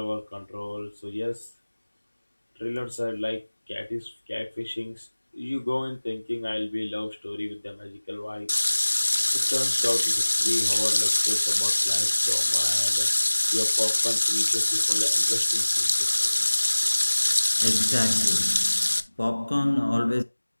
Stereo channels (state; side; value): inverted; both; correlation -1.00